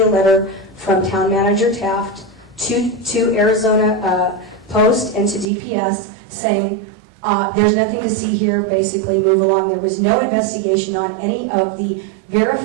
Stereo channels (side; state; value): left; drops out; at 5.5 s